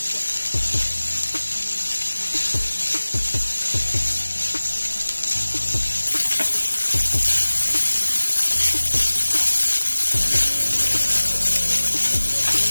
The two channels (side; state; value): both; inverted; correlation -1.00